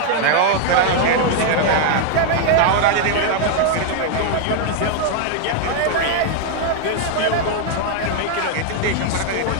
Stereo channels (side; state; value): both; different; correlation 0.00